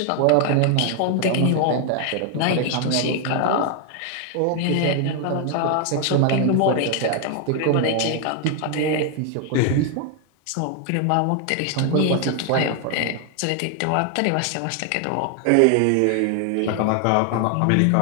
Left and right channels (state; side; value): different; both; correlation 0.00